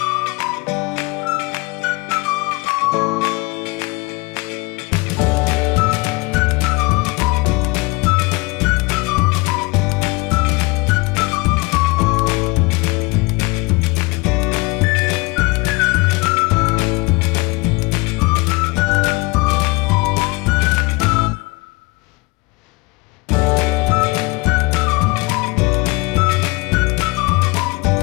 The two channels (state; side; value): quieter; right; 25.8 dB